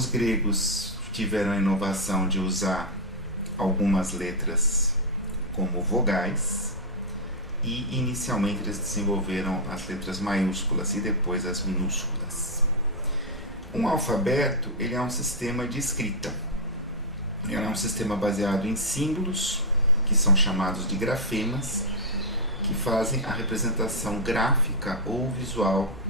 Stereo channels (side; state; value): both; normal; correlation -0.05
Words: gregos tiveram a inovação de usar algumas letras como vogais e inicialmente eles desenvolveram as letras maiúsculas e depois as minúsculas. Um alfabeto ele é um sistema de escrita. Ele é um sistema baseado em símbolos, que são chamados de grafemas, que fazem a representação gráfica ou visual